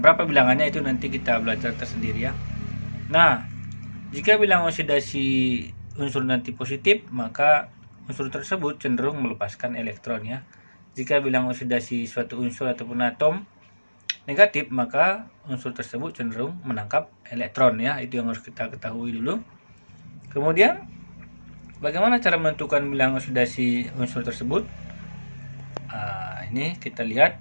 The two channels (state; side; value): inverted; both; correlation -1.00